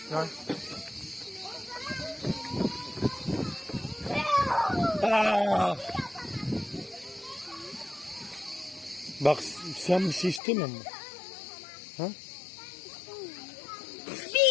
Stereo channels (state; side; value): drops out; right; at 10.4 s